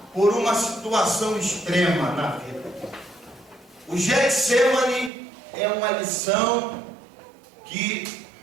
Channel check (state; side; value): drops out; left; at 5.1 s